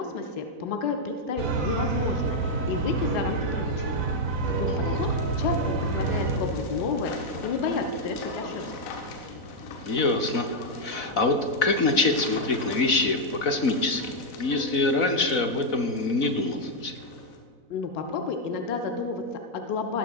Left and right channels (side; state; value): right; late; 4.0 ms